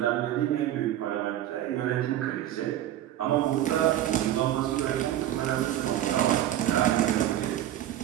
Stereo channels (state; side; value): quieter; left; 12.4 dB